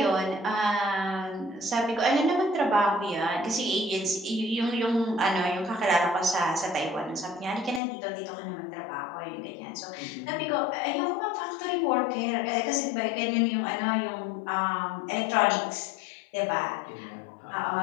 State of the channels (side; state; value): right; drops out; at 7.8 s